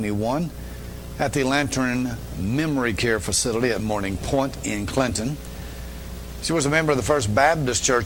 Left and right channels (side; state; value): both; identical; correlation 1.00